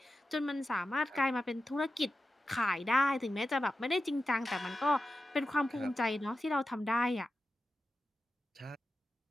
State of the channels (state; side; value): normal; both; correlation 0.91